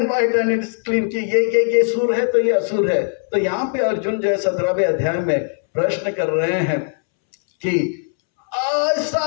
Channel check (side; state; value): right; silent; 66 dB below the other